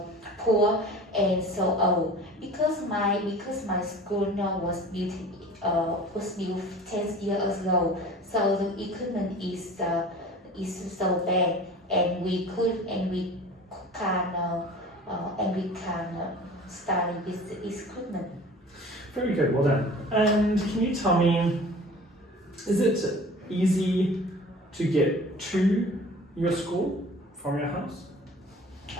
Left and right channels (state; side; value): normal; both; correlation 0.42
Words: poor and so old because my school now was built 10 years ago. So the equipment is so bad, and we can study with the equipment. Very good, well done. And can you tell me, is it easy to get to your school from your house?